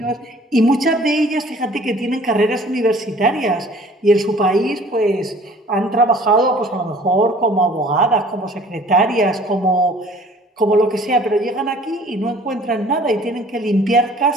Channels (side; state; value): both; normal; correlation 0.51